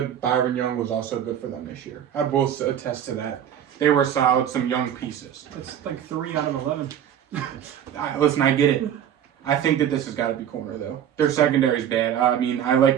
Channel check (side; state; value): left; quieter; 9.7 dB